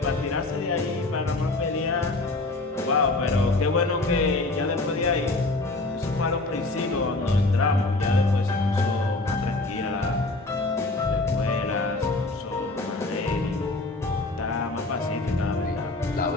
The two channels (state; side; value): quieter; right; 3.0 dB